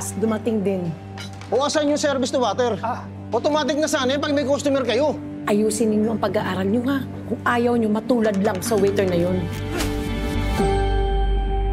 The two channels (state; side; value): identical; both; correlation 1.00